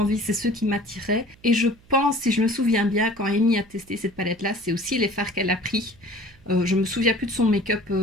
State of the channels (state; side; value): noise; right; hum, 28 dB below the sound